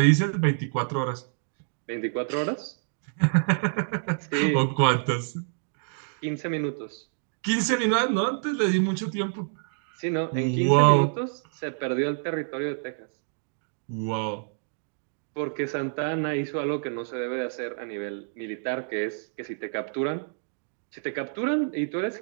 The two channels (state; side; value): silent; left; digital silence